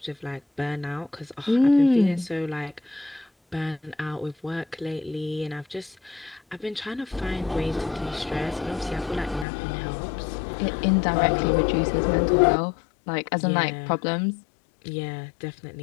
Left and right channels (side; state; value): right; drops out; at 9.5 s